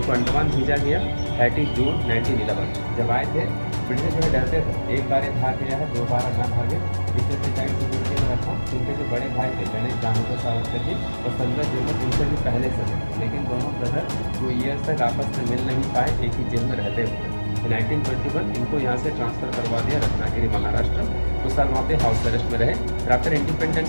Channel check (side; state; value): both; inverted; correlation -1.00